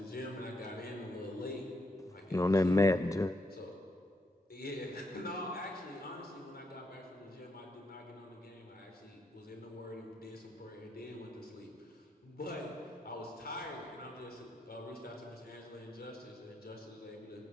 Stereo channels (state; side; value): normal; both; correlation 0.79